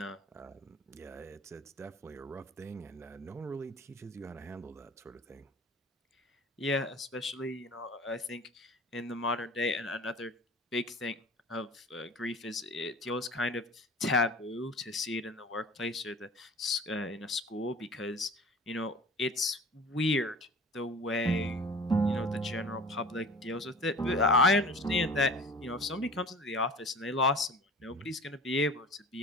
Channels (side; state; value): both; normal; correlation 0.41